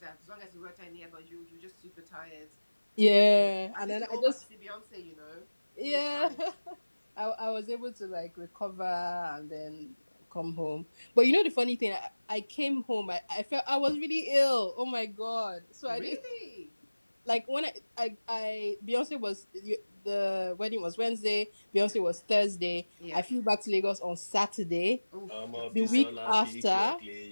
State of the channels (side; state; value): both; inverted; correlation -1.00